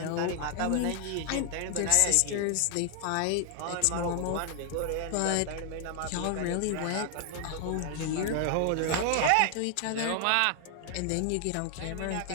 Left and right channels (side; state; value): both; different; correlation 0.00